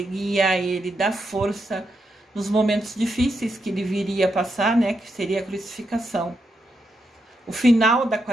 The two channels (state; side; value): normal; both; correlation 0.83